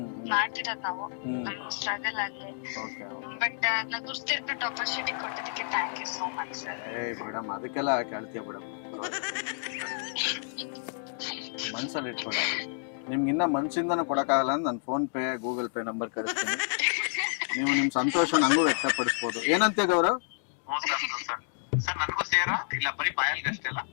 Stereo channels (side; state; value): right; silent; digital silence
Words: ಮಾಡ್ತಿರೋದ್ ನಾವು, ನಮ್ ಸ್ಟ್ರಗಲ್ ಆಗ್ಲಿ. ಬಟ್ ನಾ ಗುರ್ತಿರ್ಬಿಟ್ಟು ಆಪರ್ಚುನಿಟಿ ಕೊಟ್ಟಿದ್ದಕ್ಕೆ thank you so much sir. Madam, ಅದಕ್ಕೆಲ್ಲ ಕೇಳ್ತೀಯ ಮೇಡಮ್, ಮನ್ಸಲ್ಲಿ ಇಟ್ಕೊಳ್ಳಿ. ನಿಮ್ಗೆ ಇನ್ನ ಮನ್ಸಿಂದನೂ ಕೊಡಕ್ಕಾಗಲ್ಲ ಅಂದ್ರೆ ನಾನು phone pay Google pay number ಕಳಿಸ್ತೀನಿ. ನೀವು ನಿಮ್ ಸಂತೋಷ ನಂಗೂ ವ್ಯಕ್ತಪಡಿಸ್ಬೋದು. ಏನಂತೀಯ ಗೌರವ್? ಸರ್ ನನಗೂ ಸೇರಾ ಇಲ್ಲ, ಬರೀ ಪಾಯಲ್ಗೆ ಅಷ್ಟೇ ಅಲ್ಲ?